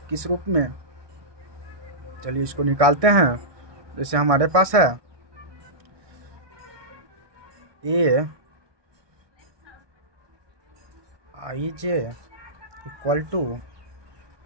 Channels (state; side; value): late; left; 1.2 ms